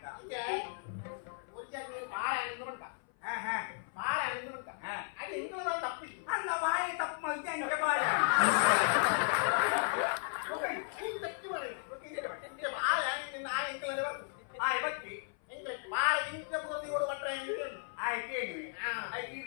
ಬಾಳೆ ಹಣ್ಣು ಬಂತ ಬಾಳೆ ಹಣ್ಣು ಬಂತ ಅದು ಹೆಂಗದ ತಪ್ಪಿ ಅಲ್ಲ ಬಾಯಿ ತಪ್ಪು ಮಲ್ತಿ ಹಂಗೆ ಬಾಳೆ ಬಾಳೆ ಹಣ್ಣಿನ ಆ ಹೆಂಗಲೇ ಬರ್ತು ಬತ್ತಿ ಹೆಂಗ್ರೆ ಬಾಳೆ ಹಿಂಗೆ ಮುಗಿದು ಓಡು ಮಟ್ರೆ ಹೆಂಗೆ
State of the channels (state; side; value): silent; right; 54 dB below the other